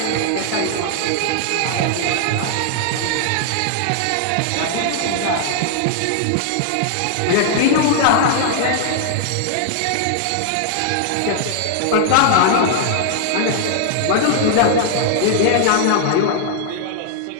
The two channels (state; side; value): different; both; correlation 0.00